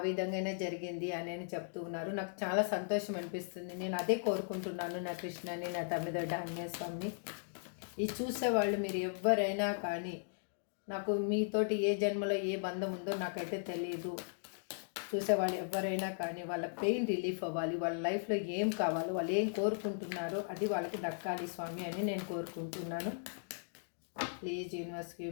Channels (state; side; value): silent; right; digital silence